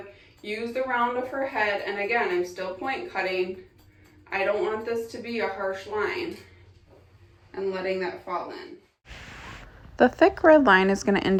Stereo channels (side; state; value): both; identical; correlation 1.00